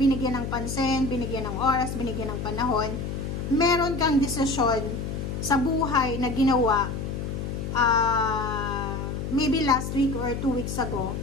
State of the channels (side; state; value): left; noise; hum, 4 dB below the sound